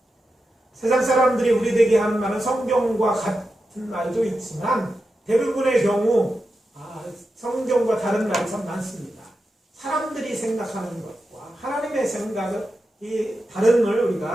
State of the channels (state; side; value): normal; both; correlation 0.90